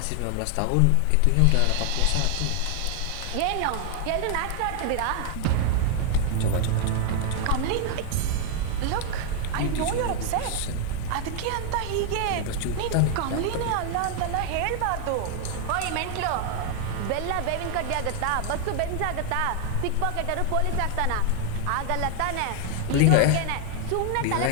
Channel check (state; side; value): different; both; correlation 0.00